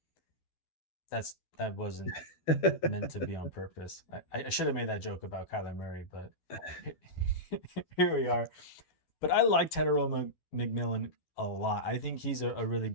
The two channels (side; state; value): right; late; 12 ms